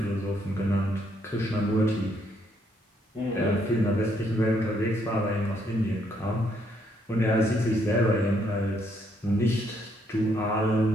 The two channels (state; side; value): normal; both; correlation 0.72